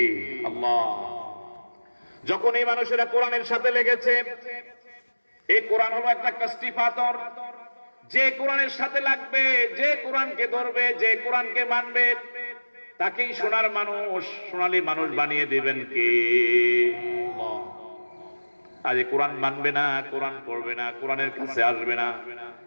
আল্লাহ। যখন এই মানুষেরা কোরআনের সাথে লেগেছে, এই কোরআন হলো একটা কাস্টি পাথর। যে কোরআনের সাথে লাগবে, যে কোরআনকে ধরবে, যে কোরআনকে মানবে, তাকেই সোনার মানুষ, সোনালী মানুষ বানিয়ে দিবেন কে? আল্লাহ। আজ কোরআন মানবে না, কোরআন পড়বে না, কোরআনের কাছে আসবে না,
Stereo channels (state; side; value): inverted; both; correlation -1.00